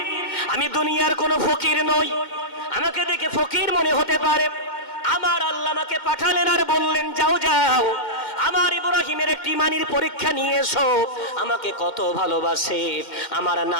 আমি দুনিয়ার কোনো ফকির নই, আমাকে দেখে ফকির মনে হতে পারে। আমার আল্লাহ আমাকে পাঠালেন আর বললেন, যাও যাও আমার ইব্রাহিমের একটি ইমানের পরীক্ষা নিয়ে এসো। আমাকে কত ভালোবাসে, আমার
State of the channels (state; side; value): late; right; 2.1 ms